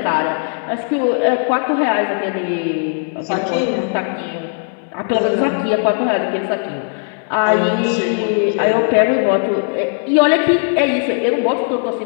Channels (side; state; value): right; silent; 62 dB below the other